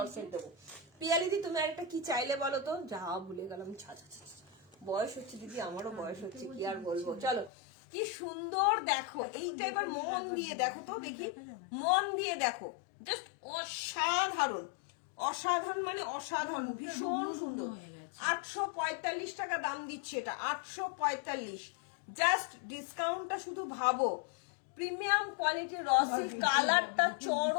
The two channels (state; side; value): drops out; right; at 7.5 s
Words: সেট দেবো। পিয়ালিদি তুমি আর একটা কি চাইলে বলো তো? যা ভুলে গেলাম, ছা ছা ছা ছা। বয়স হচ্ছে দিদি, আমারও বয়স হচ্ছে, কি আর বলবো। চলো কি সুন্দর দেখো, এইটা এবার মন দিয়ে দেখো তো, দেখি মন দিয়ে দেখো, জাস্ট অসাধারণ, অসাধারণ মানে অসাধারণ, ভীষণ সুন্দর। 845 টাকা দাম দিচ্ছে এটা, 845। জাস্ট ডিসকাউন্টটা শুধু ভাবো, প্রিমিয়াম কোয়ালিটির রসিল, কালারটা